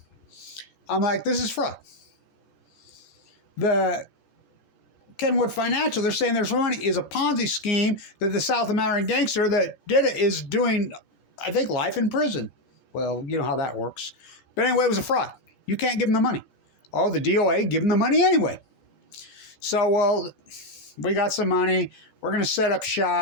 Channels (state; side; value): late; right; 14 ms